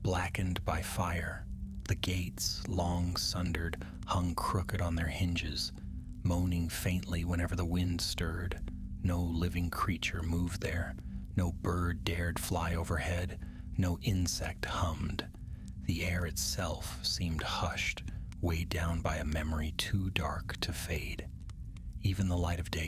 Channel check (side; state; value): both; identical; correlation 1.00